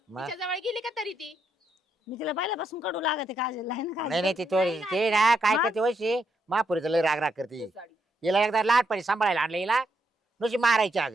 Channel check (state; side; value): normal; both; correlation 0.79